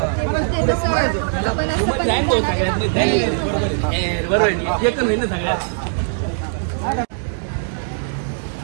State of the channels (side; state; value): left; silent; digital silence